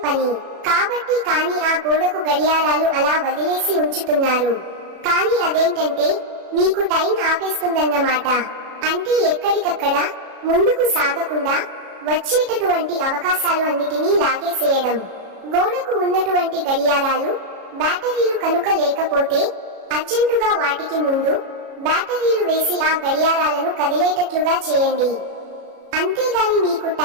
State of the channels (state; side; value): late; left; 37 ms